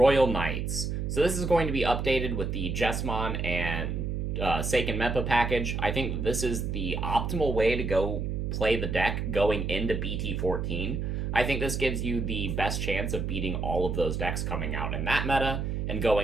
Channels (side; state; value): right; noise; hum, 2 dB below the sound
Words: Knights. So this is going to be updated with the Jessamon and Seiken Meppa package. I think that this is the optimal way to go play the deck going into BT14. I think this gives you the best chance of beating all of those decks coming out in that meta and